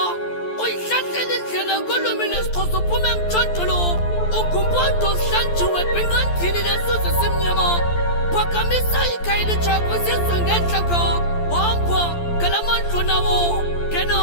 Uyihlahlele indlela kolwimi lesixhosa uphume emthontolo. Ugumpondo hlanjiwe bingandini nesuze simnyama. Phakamisa ikhaya elitsha kwizizwe ngentlaka. Hamba ngalamandlo nawo kena.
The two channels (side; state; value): right; late; 12 ms